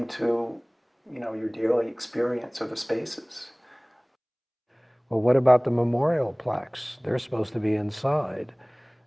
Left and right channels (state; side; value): identical; both; correlation 1.00